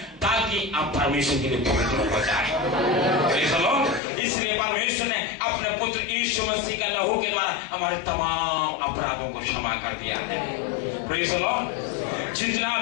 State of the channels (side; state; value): right; drops out; at 4.0 s